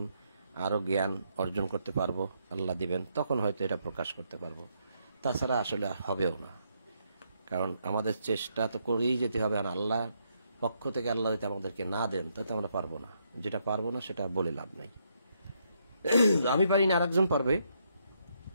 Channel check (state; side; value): inverted; both; correlation -0.76